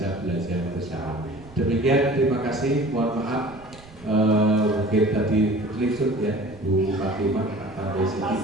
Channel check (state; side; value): noise; right; rumble, 21 dB below the sound